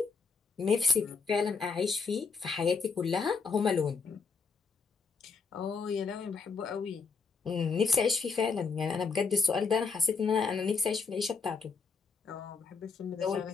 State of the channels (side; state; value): right; quieter; 4.9 dB